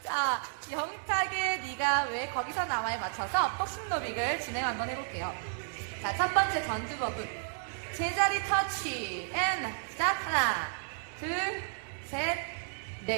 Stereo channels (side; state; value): left; silent; digital silence